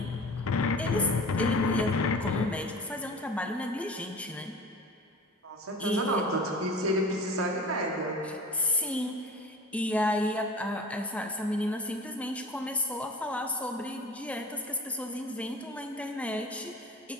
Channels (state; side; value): normal; both; correlation 0.39